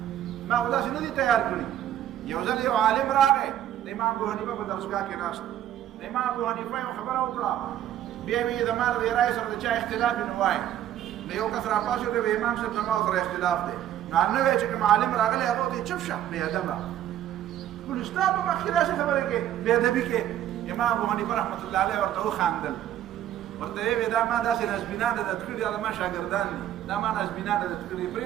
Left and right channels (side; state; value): left; quieter; 11.5 dB